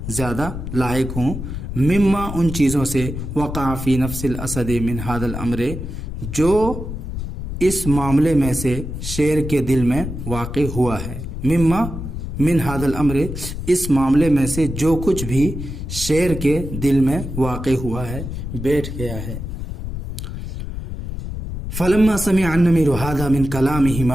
زیادہ لائق ہوں، مما ان چیزوں سے، وقع فی نفس الاسد من هذا الامر جو اس معاملے میں سے شیر کے دل میں واقع ہوا ہے، مما من هذا الامر اس معاملے میں سے جو کچھ بھی شیر کے دل میں واقع ہوا ہے، بیٹھ گیا ہے، فلما سمع النمر هذا من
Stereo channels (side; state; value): left; noise; rumble, 7 dB below the sound